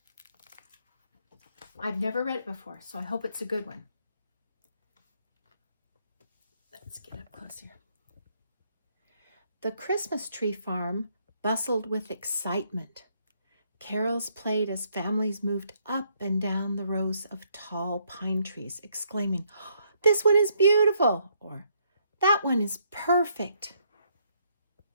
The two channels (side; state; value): both; inverted; correlation -0.72